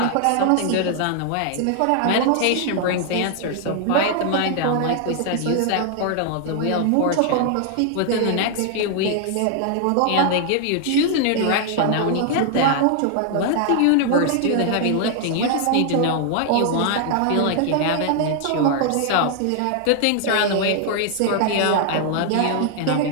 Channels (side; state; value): both; different; correlation 0.00